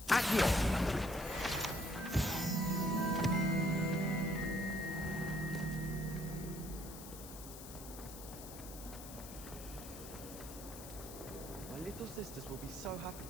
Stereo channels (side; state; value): left; noise; hiss, 13 dB below the sound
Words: My little sisters will be so happy